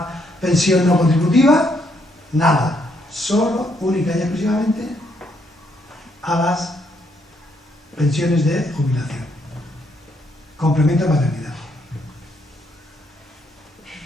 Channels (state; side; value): normal; both; correlation 0.73